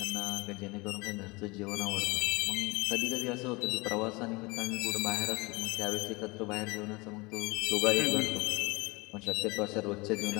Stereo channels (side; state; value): right; quieter; 25.2 dB